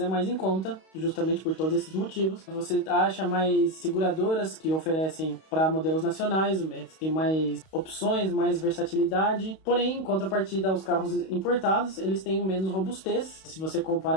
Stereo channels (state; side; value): late; right; 32 ms